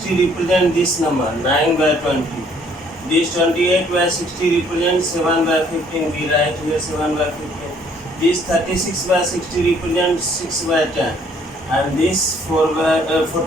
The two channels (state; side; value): normal; both; correlation 0.62